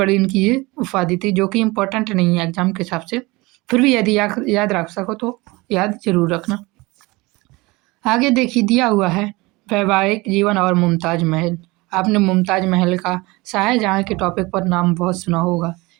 इनकी ये उपाधि थी, जो कि इम्पोर्टेंट नहीं है एग्जाम के हिसाब से, फिर भी यदि याद रख सको तो याद जरूर रखना। आगे देखिए दिया हुआ है वैवाहिक जीवन और मुमताज महल। आपने मुमताज महल का शाहजहाँ के टॉपिक पर नाम बहुत सुना होगा।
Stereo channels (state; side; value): quieter; left; 23.1 dB